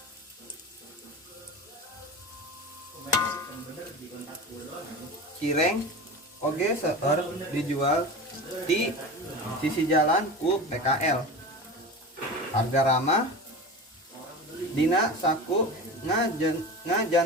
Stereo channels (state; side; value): normal; both; correlation 0.29